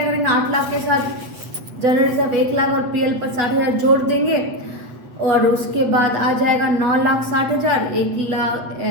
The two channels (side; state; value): left; late; 8.2 ms